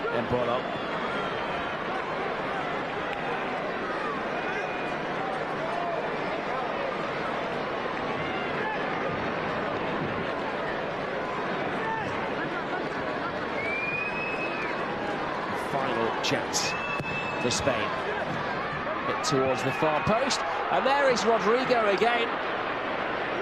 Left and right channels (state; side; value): noise; left; rumble, 21 dB below the sound